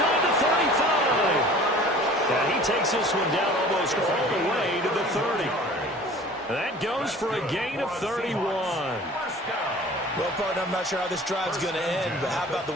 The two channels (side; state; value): both; normal; correlation 0.45